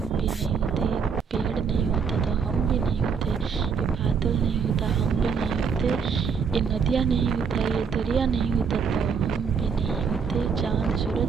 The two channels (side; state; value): left; quieter; 6.1 dB